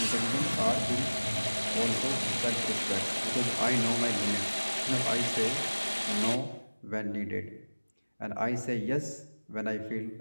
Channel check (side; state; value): both; inverted; correlation -1.00